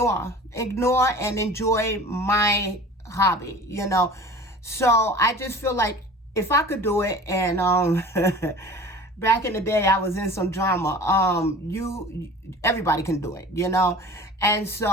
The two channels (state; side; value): normal; both; correlation 0.41